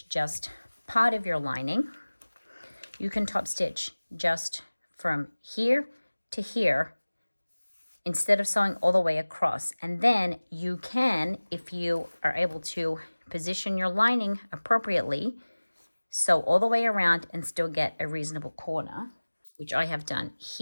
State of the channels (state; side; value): inverted; both; correlation -1.00